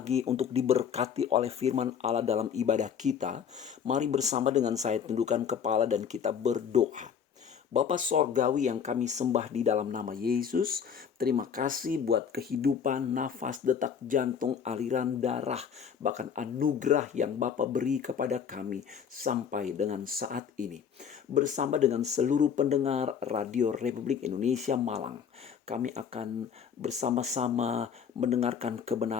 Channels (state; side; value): quieter; right; 7.4 dB